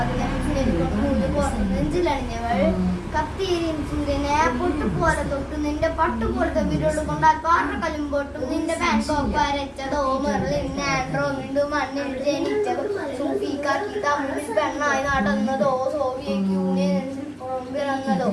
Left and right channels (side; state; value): both; identical; correlation 1.00